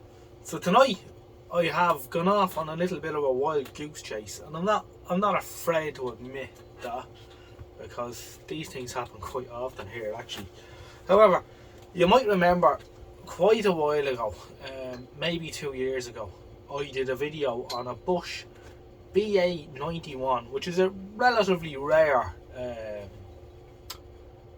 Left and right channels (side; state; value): both; identical; correlation 1.00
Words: So tonight I have gone off on a little bit of a wild goose chase, and I'm not afraid to admit that, because these things happen quite often here actually. However, you might remember quite a while ago, maybe 2 years ago, I did a video on a Bosch BA91, which is a relatively rare